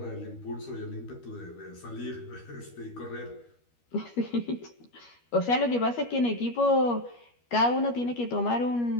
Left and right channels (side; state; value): right; late; 13 ms